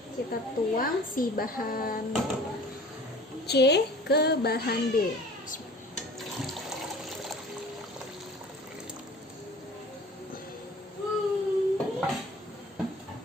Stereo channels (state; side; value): normal; both; correlation 0.45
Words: Kita tuang si bahan C ke bahan B.